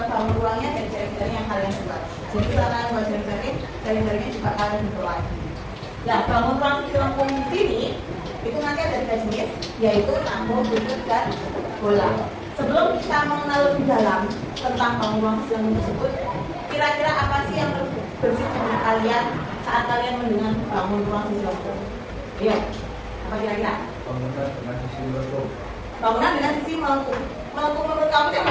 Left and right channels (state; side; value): identical; both; correlation 1.00